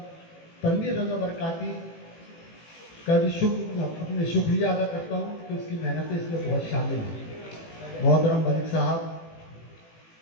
تنویر رضا برکاتی کا بھی اپنے شکریہ ادا کرتا ہوں کہ اس کی محنتیں اس میں بہت شامل ہیں۔ محترم ملک صاحب،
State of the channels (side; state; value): right; late; 18 ms